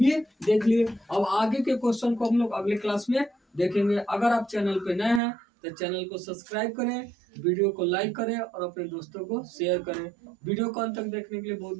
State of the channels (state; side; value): drops out; left; at 5.2 s